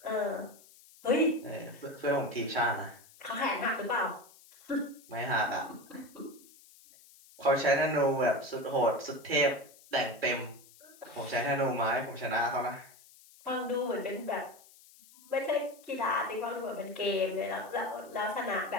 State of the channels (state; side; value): noise; left; hiss, 24 dB below the sound